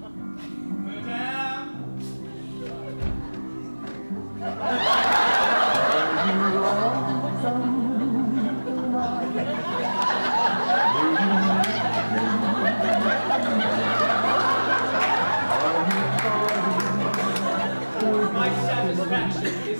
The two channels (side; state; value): both; inverted; correlation -1.00